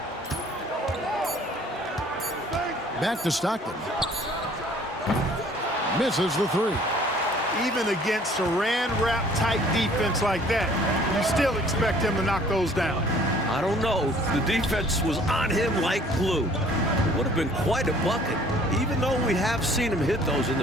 Back to Stockton. Misses the 3. Even against Saran wrap type defense like that, you still expect him to knock those down. I don't know. The defense was on him like glue. It would have been quite a bucket, even though we have seen him hit those in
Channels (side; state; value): both; normal; correlation 0.55